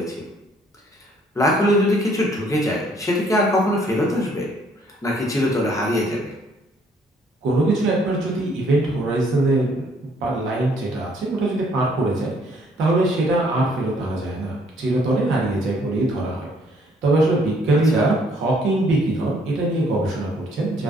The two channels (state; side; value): normal; both; correlation 0.64